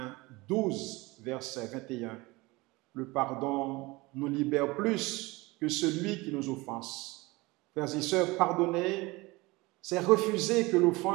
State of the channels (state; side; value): quieter; left; 22.8 dB